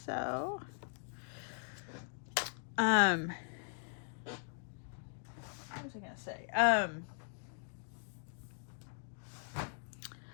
What was I gonna say?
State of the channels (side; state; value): right; silent; digital silence